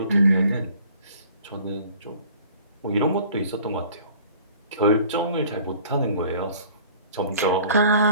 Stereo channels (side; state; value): both; inverted; correlation -0.50